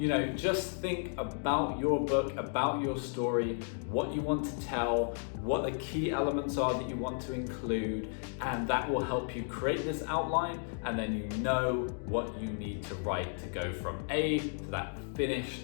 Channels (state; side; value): silent; right; 55 dB below the other